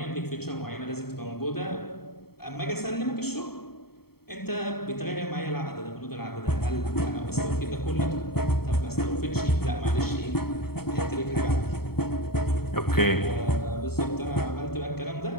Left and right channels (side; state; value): right; late; 0.95 ms